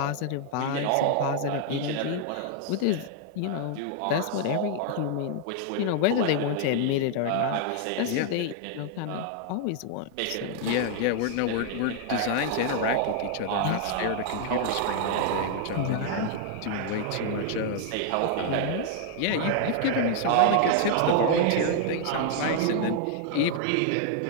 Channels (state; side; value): different; both; correlation 0.00